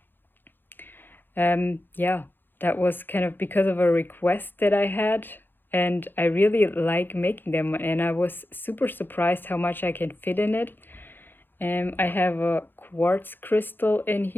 That was kind of because of a request that I had, and I really like making them, and I was super surprised how much I can fit in it. I have a quartz crystal in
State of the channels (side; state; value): right; late; 0.097 ms